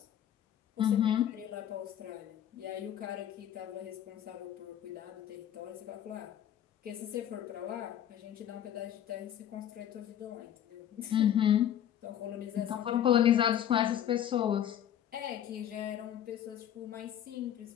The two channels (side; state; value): right; quieter; 10.5 dB